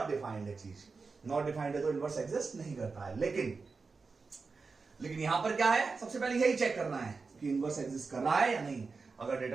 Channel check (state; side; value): quieter; left; 4.5 dB